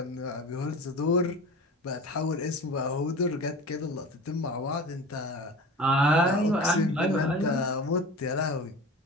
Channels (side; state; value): both; normal; correlation 0.35